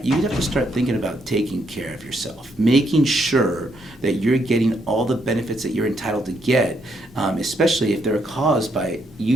you have to start thinking about taking care of yourself, making sure that you're getting all the benefits that you're entitled to get, especially if they're caused by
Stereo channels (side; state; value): both; normal; correlation 0.75